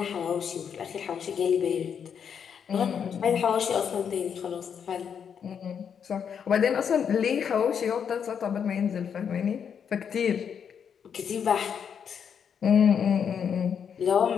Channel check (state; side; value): quieter; right; 7.5 dB